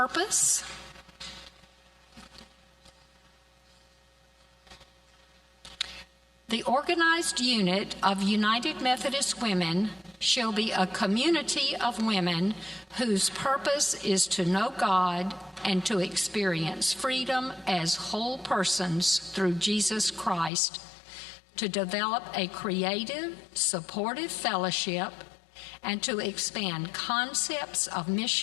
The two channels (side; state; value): right; drops out; at 20.5 s